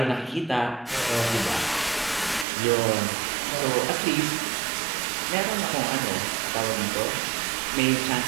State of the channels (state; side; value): drops out; left; at 2.5 s